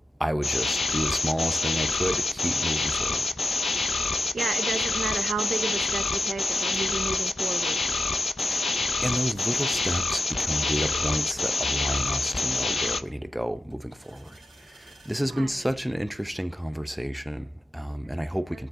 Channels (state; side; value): normal; both; correlation 0.90